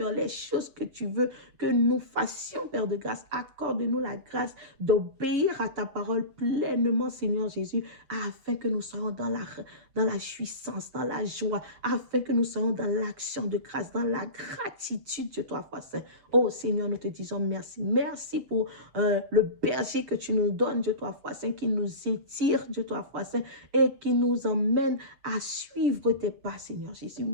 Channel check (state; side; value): late; left; 7.3 ms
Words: les choses que tu veux que nous fassions, Père de grâce. Accorde-nous la grâce d'obéir à ta parole pleinement, Seigneur Jésus, afin que nous soyons dans la jouissance, dans la joie, afin que nous soyons dans l'action de grâce, dans la gratitude, Dieu toi, foi saint. Oh Seigneur, nous te disons merci. Merci pour le berger que tu nous donnes, Dieu toi, foi saint, qui nous étire, Dieu toi, foi saint, et qui nous emmène à suivre tes pas, Seigneur Jésus.